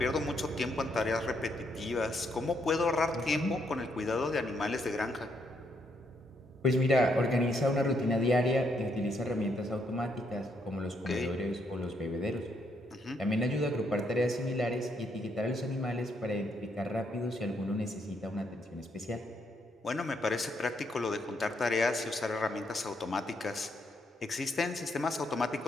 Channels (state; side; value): normal; both; correlation 0.75